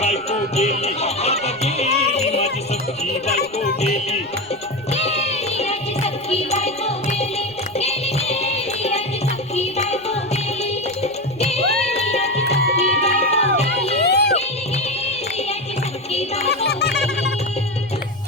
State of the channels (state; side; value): noise; right; rumble, 27 dB below the sound